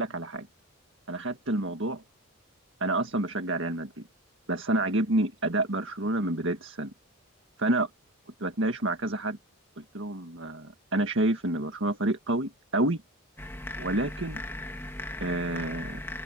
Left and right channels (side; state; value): both; normal; correlation 0.31